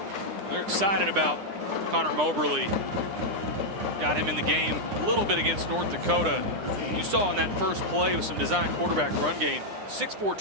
They're excited about Connor Moberly. Got him in the game a little bit against North Dakota. You saw in that first play with some design quarterback run game, 6'4",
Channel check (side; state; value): left; late; 9.9 ms